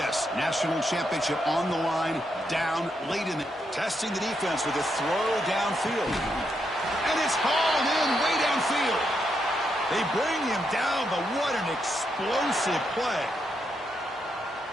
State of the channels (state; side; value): normal; both; correlation 0.81